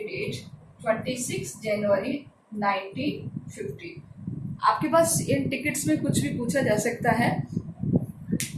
date 26 January 1950. आपके पास इन टिकट्स में कुछ भी पूछा जा सकता है.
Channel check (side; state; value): both; identical; correlation 1.00